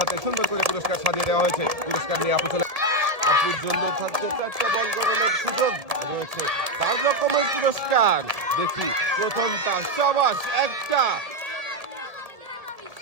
হাতে সুন্দর করে পুরস্কার সাজিয়ে দেওয়া হয়েছে। পুরস্কার নিয়ে আপু চলে। আপুর জন্য থাকছে 4টা বল গড়ানোর সুযোগ রয়েছে, 4 রকমের পুরস্কার। দেখি প্রথমটা, সাবাস। একটা,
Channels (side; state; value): left; late; 1.7 ms